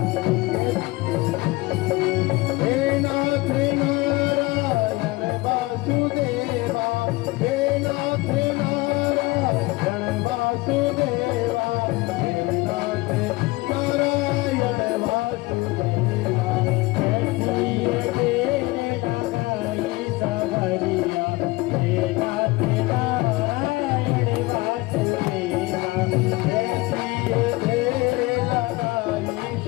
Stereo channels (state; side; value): quieter; right; 21.8 dB